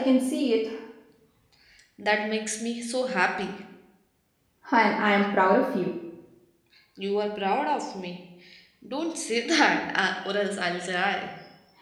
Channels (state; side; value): identical; both; correlation 1.00